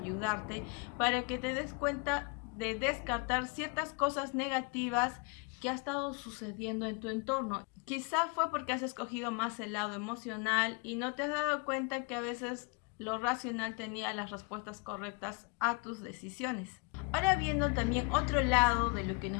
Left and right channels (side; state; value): right; quieter; 30.9 dB